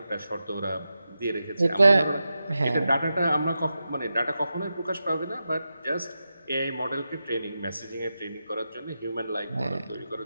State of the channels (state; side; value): inverted; both; correlation -0.90